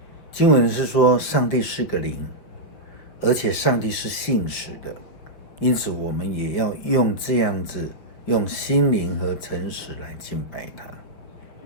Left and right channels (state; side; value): late; right; 5.9 ms